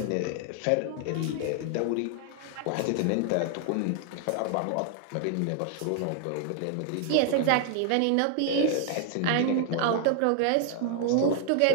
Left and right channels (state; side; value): different; both; correlation 0.00